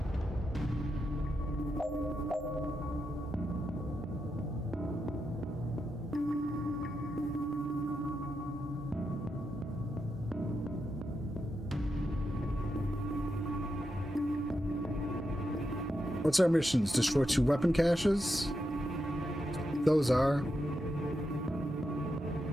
What's our missions? Destroy 2 weapon caches? Those are.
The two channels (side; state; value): both; normal; correlation 0.86